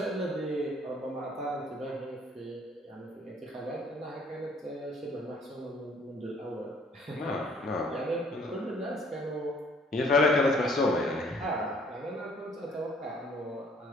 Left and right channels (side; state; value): both; normal; correlation 0.60